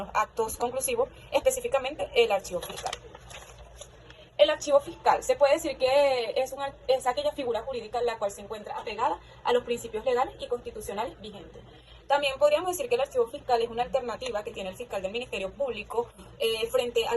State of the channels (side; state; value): both; identical; correlation 1.00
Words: actos conclusivos, específicamente el archivo fiscal. El archivo fiscal se puede decir que es aquella figura jurídica en la cual se encuentra apegada a los principios legales y constitucionales vigentes. También podríamos decir que el archivo fiscal es una alternativa que tiene el fiscal del Ministerio Público frente a